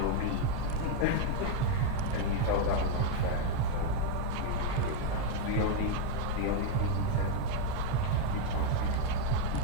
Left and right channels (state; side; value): different; both; correlation 0.01